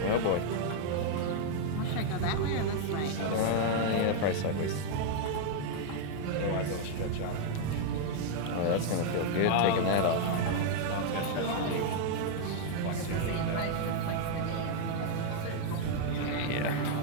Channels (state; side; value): different; both; correlation 0.00